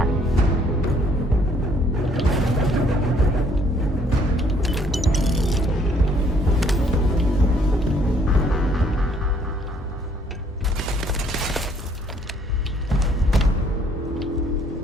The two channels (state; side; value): normal; both; correlation 0.64